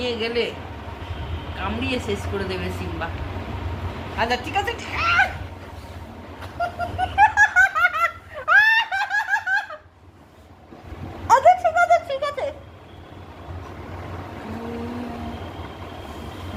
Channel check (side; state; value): both; identical; correlation 1.00